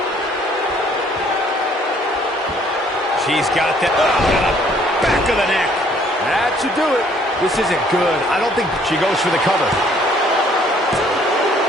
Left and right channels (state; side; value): normal; both; correlation 0.61